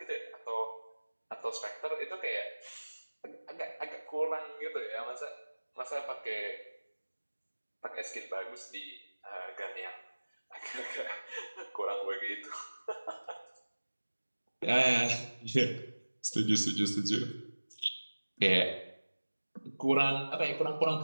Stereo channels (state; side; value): inverted; both; correlation -1.00